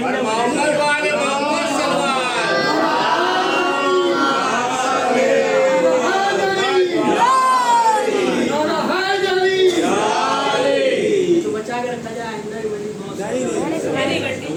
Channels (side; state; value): both; identical; correlation 1.00